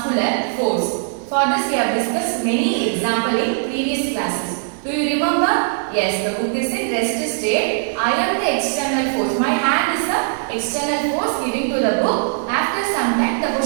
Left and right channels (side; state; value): left; silent; digital silence